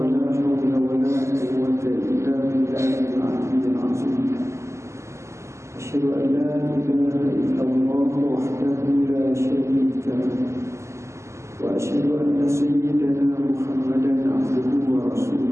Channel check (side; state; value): left; late; 0.13 ms